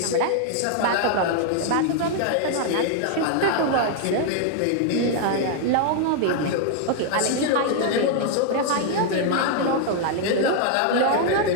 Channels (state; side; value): different; both; correlation 0.00